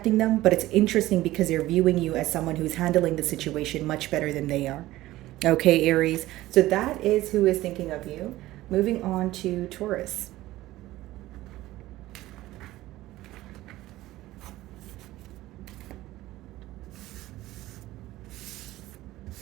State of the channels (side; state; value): left; quieter; 16.5 dB